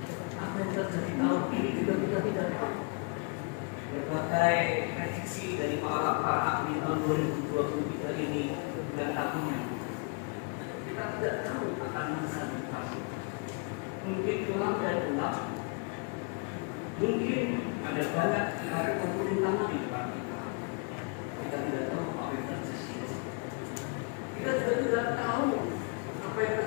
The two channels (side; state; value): right; quieter; 35.5 dB